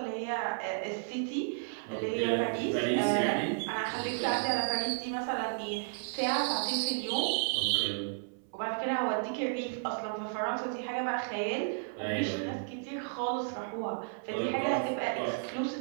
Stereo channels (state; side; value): silent; left; 56 dB below the other